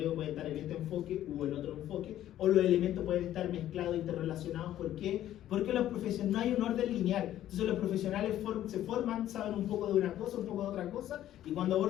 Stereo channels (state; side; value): quieter; right; 12.5 dB